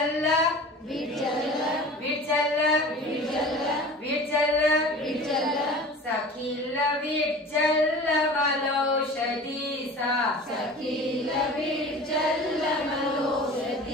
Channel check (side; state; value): both; normal; correlation 0.39